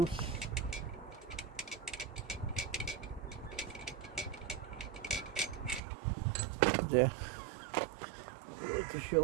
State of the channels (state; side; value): drops out; left; at 5.8 s